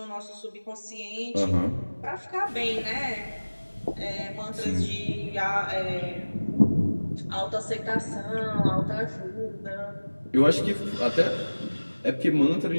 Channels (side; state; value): both; inverted; correlation -1.00